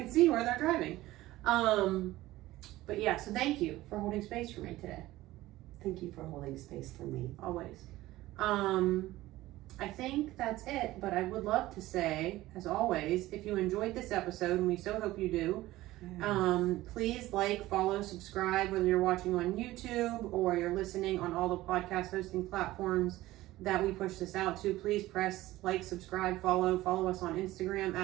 see where they're driving. But yeah, so thank you for holding space for me today. Thank you for holding space for me. Always. I think that's it, but I would love to say, as always, if you enjoyed this episode, and we so hope you do, Yes. please like, follow, subscribe, whether you're watching on YouTube or you're listening on all the podcast hosting platforms that we push this out to. Please press like, subscribe, follow us on Instagram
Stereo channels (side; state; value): left; quieter; 16.9 dB